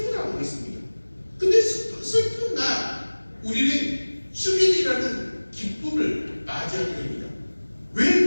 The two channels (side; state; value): both; inverted; correlation -1.00